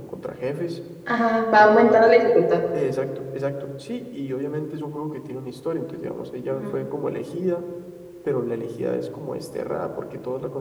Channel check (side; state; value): both; identical; correlation 1.00